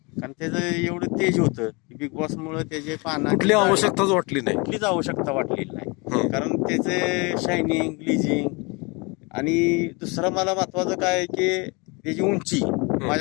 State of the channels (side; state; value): right; quieter; 28.6 dB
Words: कारण त्याचं एवढं तेज होतं की बिग बॉस मुळे त्याचे कुठली आवश्यकताच वाटली नाही. कुठलीच आवश्यकता वाटलेली नाही. हम्म. कारण त्याचे शायनिंग, ग्लिजिंग आणि दुसरं मला महत्वाचं काय आहे की त्याची उंची